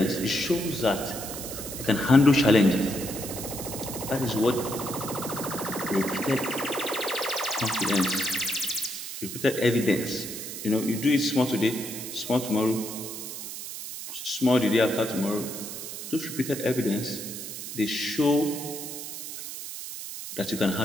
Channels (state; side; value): noise; right; hiss, 8 dB below the sound